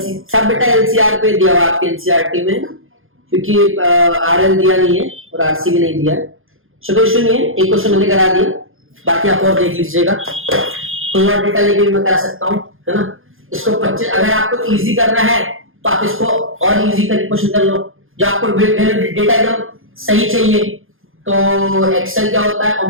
बेटा एलसीआर पे दिया हुआ आपके एनसीईआरटी में, क्योंकि आरएल दिया नहीं है और आरसी भी नहीं दिया है। कोई इशू नहीं है, एक क्वेश्चन मैंने करा दिया, बाकी आप और देख लीजिएगा। कोई और डेटा लेके भी मैं करा सकता हूँ, है ना। इसको 25, अगर आपको इजी करना है तो आप इसको और इजी करके क्वेश्चन कर लो। जो आपको डेटा एकदम सही चाहिए तो एक्सेल क्या होता है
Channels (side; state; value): left; late; 0.60 ms